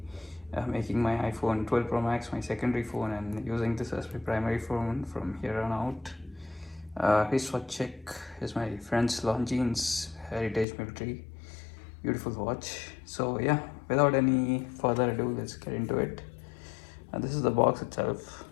making my iPhone 12 Pro Max my secondary phone and using this as my primary phone from here on out. Wristwatch check is my friend's Longines Heritage Military. Beautiful watch. So yeah, without any further ado, let's get into it. This is the box itself.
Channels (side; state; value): right; drops out; at 10.7 s